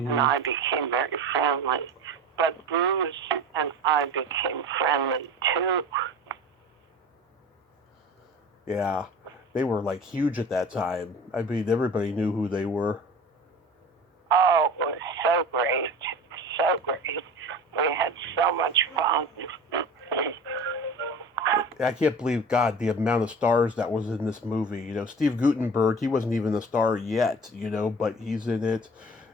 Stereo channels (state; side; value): normal; both; correlation 0.37